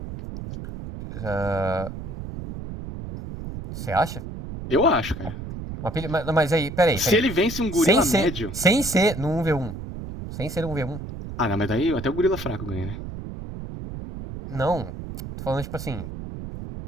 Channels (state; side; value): noise; right; rumble, 9 dB below the sound